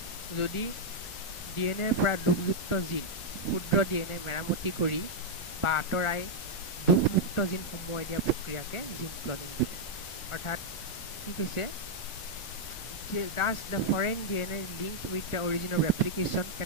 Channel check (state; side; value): late; right; 1.4 ms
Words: যদি ডিএনএৰ পৰা দুখযুক্ত জিন ক্ষুদ্ৰ ডিএনএ মেৰামতি কৰি বা আঁতৰাই দুখমুক্ত জিন সোমোৱাই দিয়া প্ৰক্ৰিয়াকে জিন ক্লনিং বোলে অৰ্থাৎ কি কৈছে Thus, the foreign DNA linked with the origin of replication can